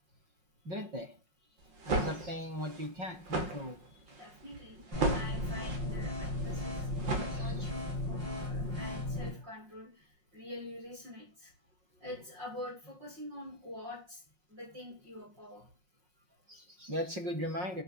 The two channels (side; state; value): left; late; 5.5 ms